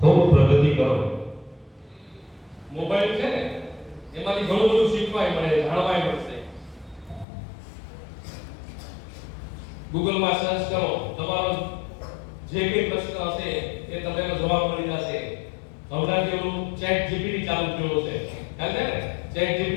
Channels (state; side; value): drops out; right; at 7.2 s